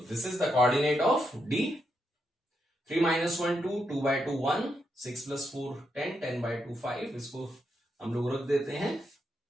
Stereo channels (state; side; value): normal; both; correlation 0.81